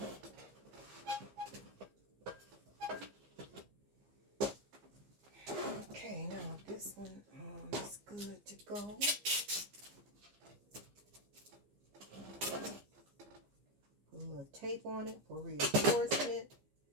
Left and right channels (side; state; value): left; late; 15 ms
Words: Okay, now this one is good to go. Put a little tape on it for reinforcement